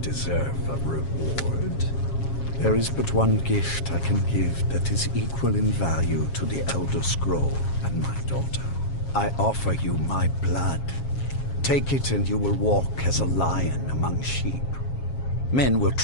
deserve a reward. There is but one gift I can give that is equal in value to the Elder Scroll and my daughter. I offer you my blood. Take it and you will walk as a lion among sheep. Men will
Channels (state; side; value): late; right; 7.4 ms